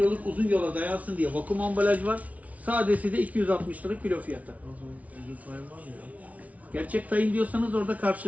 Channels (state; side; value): late; left; 0.069 ms